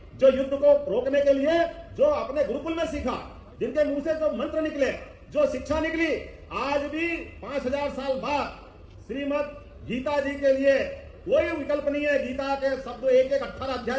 जो युद्ध को रोकने के लिए जो अपने गुरुकुल में सीखा, जिनके मुंह से जो मंत्र निकले, जो शिक्षा निकली, आज भी 5000 साल बाद श्रीमद गीता जी के लिए कोई विकल्प नहीं है। गीता के शब्द एक 18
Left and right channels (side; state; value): both; identical; correlation 1.00